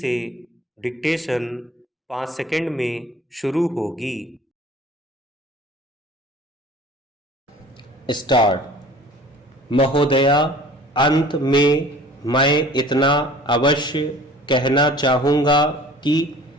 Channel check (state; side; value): normal; both; correlation 0.47